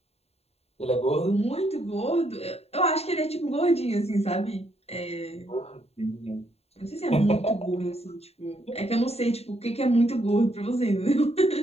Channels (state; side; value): late; right; 0.30 ms